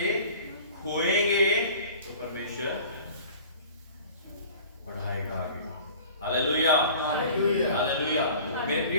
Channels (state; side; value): inverted; both; correlation -0.44